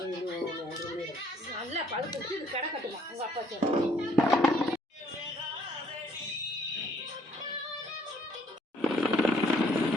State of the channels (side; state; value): both; normal; correlation 0.63